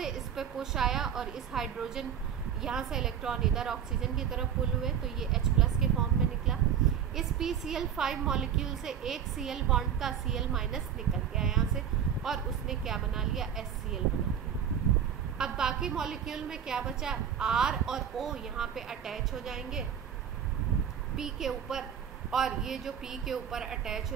इस पे पुश आया और इस हाइड्रोजन, यहाँ से इलेक्ट्रॉन इधर ऑक्सीजन की तरफ पुल हुए तो ये H+ के फॉर्म में निकला। इस PCl5 मॉलिक्यूल से एक Cl बॉन्ड का Cl- निकल गया यहाँ से और उसने क्या बना लिया, HCl बना लिया। अब बाकी मॉलिक्यूल में क्या बचा, R और O यहाँ पे अटैच हो जाएंगे P के ऊपर, और ये जो P के ऊपर अटैच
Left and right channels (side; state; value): left; quieter; 8.5 dB